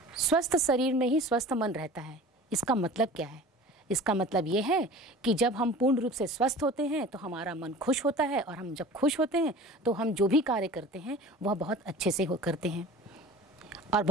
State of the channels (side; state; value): both; normal; correlation 0.40